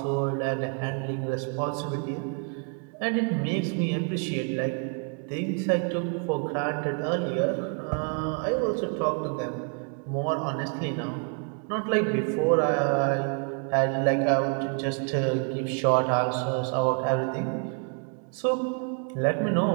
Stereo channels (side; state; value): left; quieter; 38.0 dB